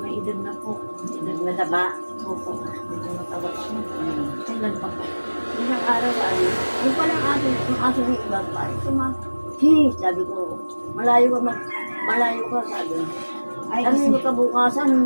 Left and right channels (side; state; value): both; inverted; correlation -1.00